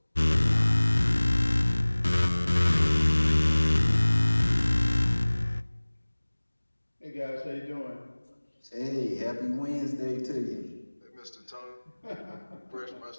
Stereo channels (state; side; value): inverted; both; correlation -1.00